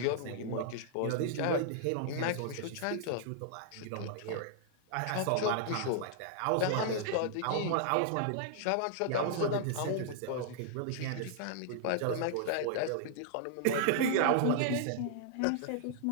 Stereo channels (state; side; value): different; both; correlation -0.01